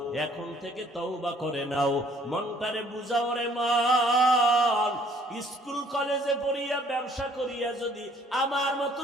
এখন থেকে তওবা করে নাও, মনটারে বুঝাও রে মন। স্কুল কলেজে পড়িয়া ব্যবসা করিয়া যদি আমার মতো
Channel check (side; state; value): both; normal; correlation 0.60